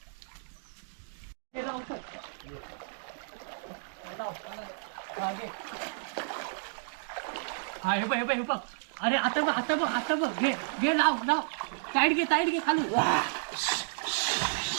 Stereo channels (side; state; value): left; silent; digital silence